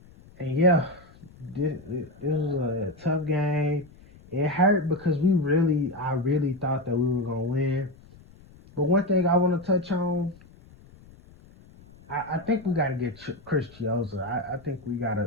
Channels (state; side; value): noise; left; rumble, 24 dB below the sound